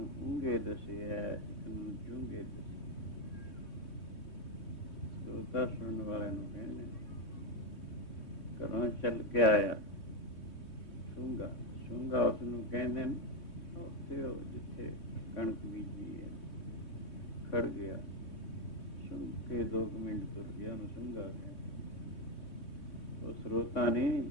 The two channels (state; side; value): late; right; 3.2 ms